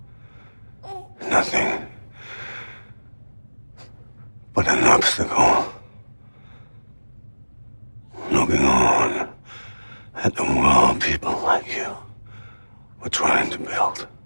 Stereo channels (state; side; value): inverted; both; correlation -1.00